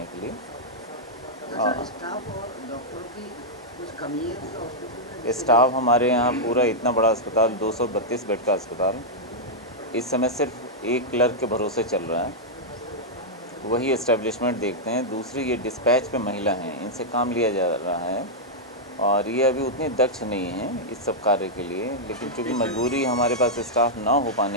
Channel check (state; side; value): normal; both; correlation -0.07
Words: के लिए। स्टाफ हमारे यहाँ पूरा इतना बड़ा अस्पताल, 232 बेड का अस्पताल, इस समय सिर्फ एक क्लर्क के भरोसे चल रहा है, वही एस्टेब्लिशमेंट देखते हैं। दूसरी ये डिस्पैच पे महिला हैं, इनसे काम लिया जा रहा है और ये अभी उतनी दक्ष नहीं है इस सब कार्य के लिए, लेकिन चूँकि मजबूरी हमारे पास स्टाफ ना हो